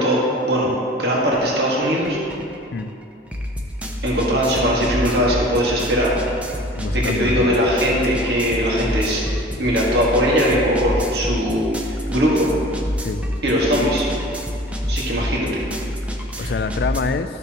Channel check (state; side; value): normal; both; correlation 0.43